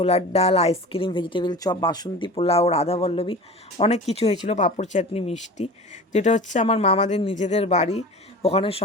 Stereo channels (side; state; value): both; normal; correlation 0.36